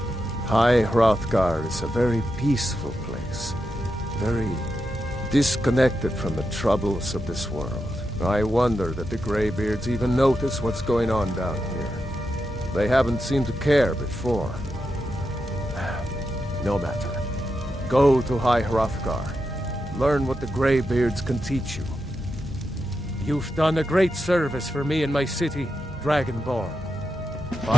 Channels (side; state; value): both; normal; correlation 0.87